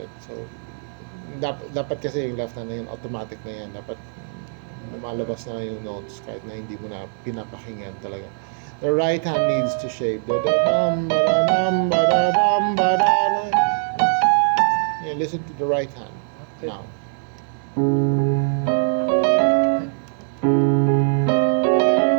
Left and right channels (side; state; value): left; silent; 64 dB below the other